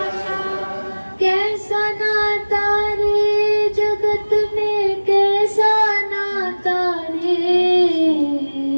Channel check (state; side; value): inverted; both; correlation -1.00